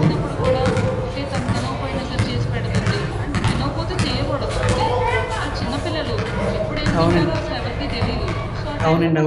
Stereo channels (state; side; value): identical; both; correlation 1.00